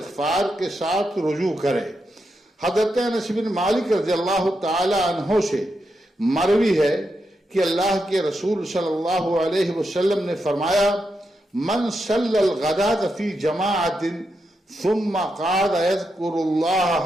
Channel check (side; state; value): both; normal; correlation 0.85